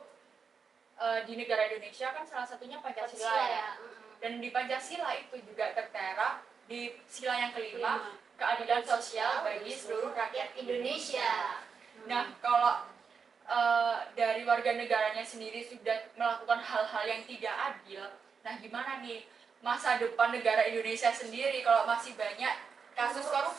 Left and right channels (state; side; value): quieter; left; 5.8 dB